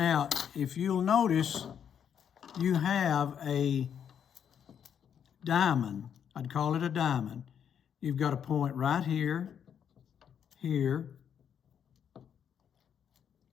if you'll notice, you have a diamond. I'd call it a diamond. You've got a point right here, here,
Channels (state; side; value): quieter; right; 8.3 dB